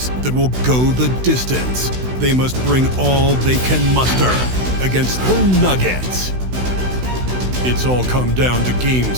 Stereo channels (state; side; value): late; left; 16 ms